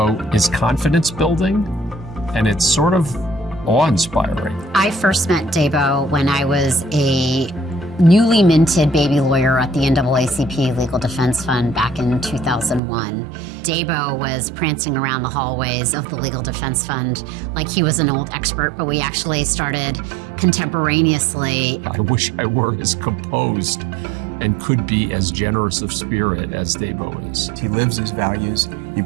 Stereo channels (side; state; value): left; drops out; at 12.8 s